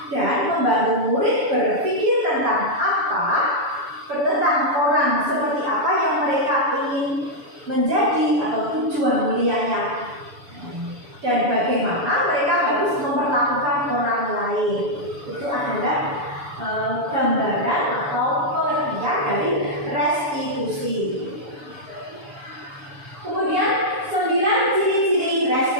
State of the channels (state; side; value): late; left; 7.0 ms